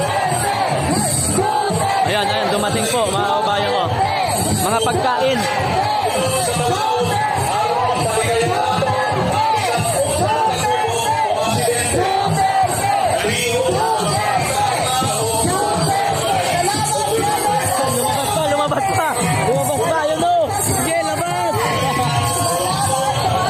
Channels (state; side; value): identical; both; correlation 1.00